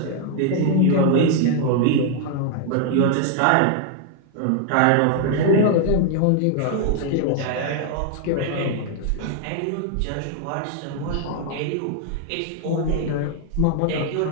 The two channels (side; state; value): both; different; correlation 0.00